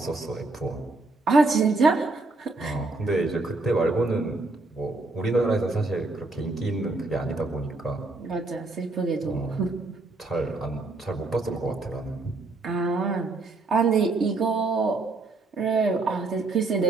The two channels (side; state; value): left; quieter; 3.3 dB